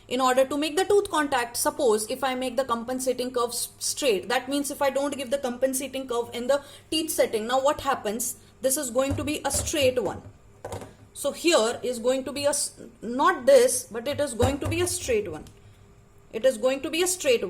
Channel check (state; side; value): identical; both; correlation 1.00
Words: In order to make the tooth contact, suppose if I make the compensating curve straight, that means if I don't give the compensating curve in the teeth setting, now what happens? This is going to be a straight one. So here is going to be not this, but it is going to be a straight one. It is going to be a straight